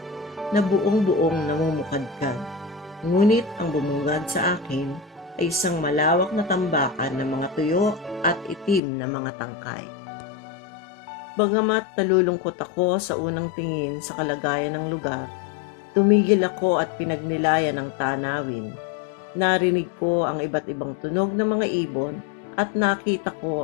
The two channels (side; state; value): right; drops out; at 8.8 s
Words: na buong-buong namumukadkad. Ngunit ang bumungad sa akin ay isang malawak na tambakan ng mga tuyo at itim na mga tangkay. Bagamat nalulungkot ako sa unang tingin sa kalagayan ng lugar, tumigil ako at pinagnilayan ng tanawin. Narinig ko ang iba't ibang tunog ng mga ibon at nakita ko